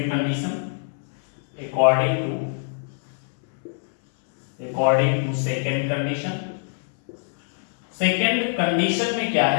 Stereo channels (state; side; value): silent; right; 63 dB below the other